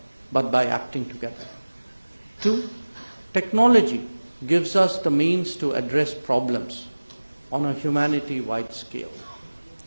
but by acting together. 2, technology gives us the means to address problems on a humanity-wide scale.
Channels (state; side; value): inverted; both; correlation -1.00